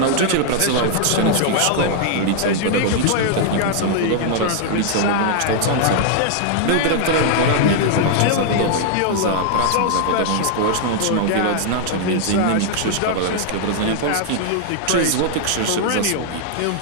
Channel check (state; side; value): different; both; correlation 0.00